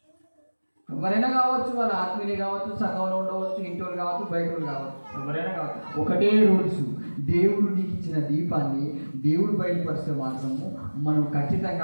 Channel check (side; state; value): both; inverted; correlation -1.00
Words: ఎవరైనా కావచ్చు, వాళ్ళ ఆత్మీయులు కావచ్చు, సంఘంలో ఉండవచ్చు, ఇంటోళ్ళు కావచ్చు, బయటోళ్ళు కావచ్చు, ఎవరైనా కావచ్చు. ఒకటే రూల్స్, దేవుడు నీకు ఇచ్చిన దీపాన్ని దేవుడు బయలుపరిస్తే మాత్రము మనం ఖచ్చితంగా